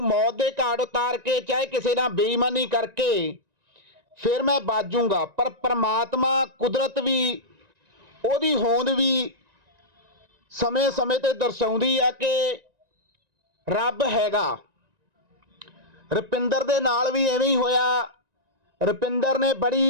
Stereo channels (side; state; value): left; late; 1.9 ms